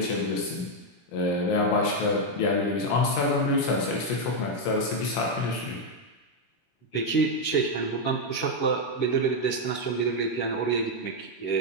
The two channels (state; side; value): late; right; 16 ms